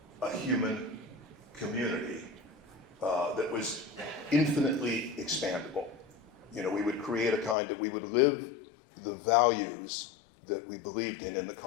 a human community that was infinitely expandable. We would create a kind that we would live the values that we believed in the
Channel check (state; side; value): drops out; right; at 7.6 s